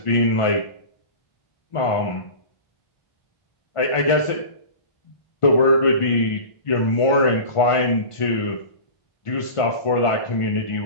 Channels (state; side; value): late; right; 1.5 ms